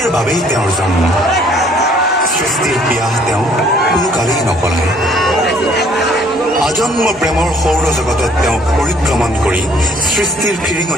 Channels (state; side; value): normal; both; correlation 0.60